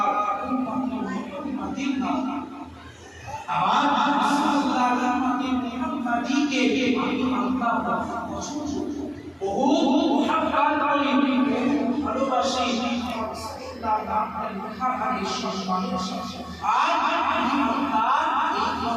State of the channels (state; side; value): identical; both; correlation 1.00